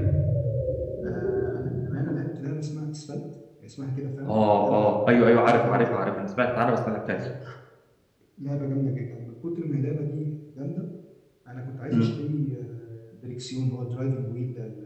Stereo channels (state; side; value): identical; both; correlation 1.00